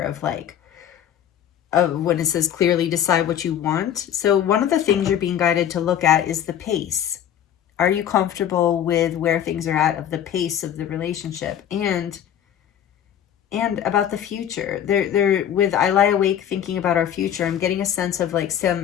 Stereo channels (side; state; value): right; quieter; 10.0 dB